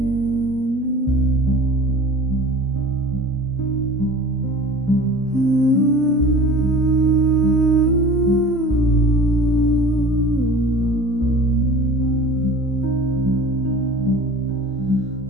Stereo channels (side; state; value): both; normal; correlation 0.41